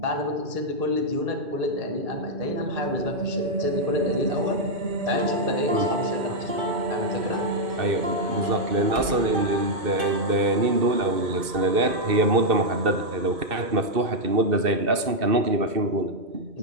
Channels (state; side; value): late; left; 2.6 ms